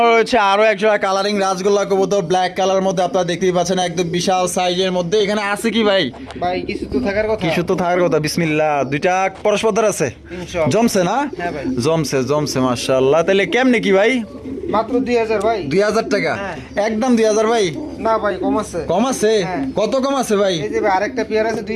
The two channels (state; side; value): identical; both; correlation 1.00